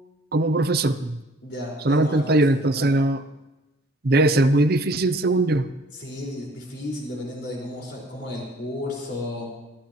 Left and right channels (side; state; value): both; normal; correlation 0.55